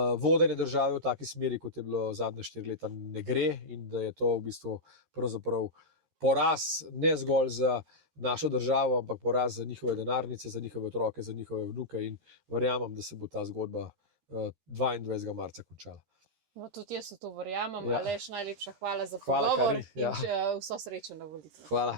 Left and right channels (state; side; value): late; left; 13 ms